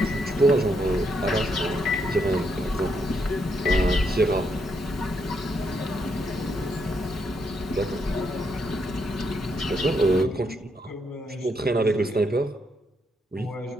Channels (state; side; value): normal; both; correlation 0.77